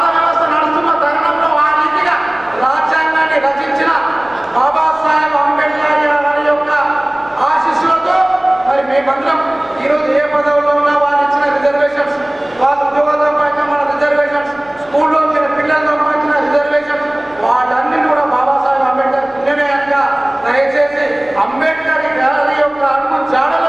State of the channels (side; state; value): left; noise; hum, 28 dB below the sound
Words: ఈరోజు ఏ పదవుల్లో ఉన్నా వాళ్ళు ఇచ్చిన రిజర్వేషన్స్, వాళ్ళ ఉద్యోగాలతో పాటు మన రిజర్వేషన్స్, స్కూల్లో వచ్చిన పిల్లలతో వచ్చిన రిజర్వేషన్స్, వాళ్ళన్నీ కూడా బాబాసాహెబ్ అంబేద్కర్ పుణ్యమేయంగా దయచేసి అంబేద్కర్ గారి యొక్క అడుగు జాడలో